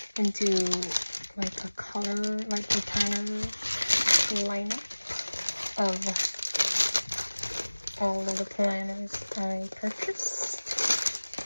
and do like a color, like the planner lineup of all of the planners I purchased.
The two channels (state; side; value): inverted; both; correlation -1.00